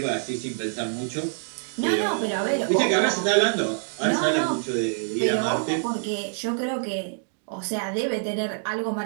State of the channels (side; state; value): left; silent; digital silence